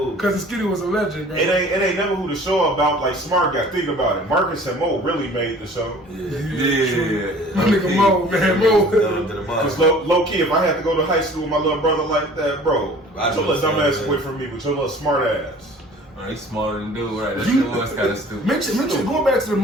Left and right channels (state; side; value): normal; both; correlation 0.48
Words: Because Skitty was a legend, bro. It ain't never who the show about like Smart Guy. Think about it. Marcus and Mo really made the show. Yeah. My nigga Mo, man, Mo. Because low key, if I had to go to high school with my little brother like that, bro, your little dumb ass away from me with your little smart ass. He's smarter than dude, right? That shit was kind of stupid. Mention going back to the